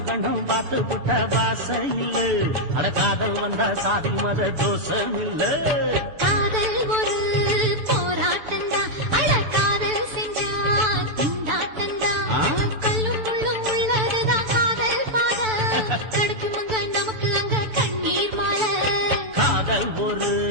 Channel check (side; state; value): left; late; 7.0 ms